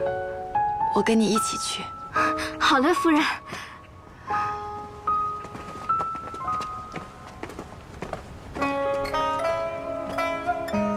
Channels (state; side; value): identical; both; correlation 1.00